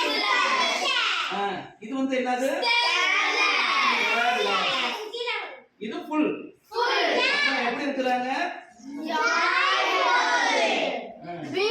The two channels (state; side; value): identical; both; correlation 1.00